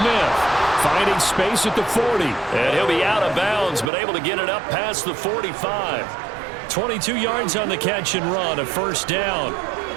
finding space at the 40. And he'll be out of bounds, but able to get it up past the 45. 22 yards on the catch and run, a first down.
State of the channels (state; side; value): drops out; left; at 3.9 s